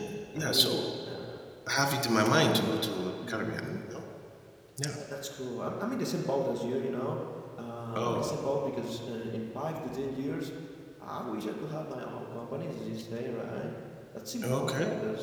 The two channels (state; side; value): identical; both; correlation 1.00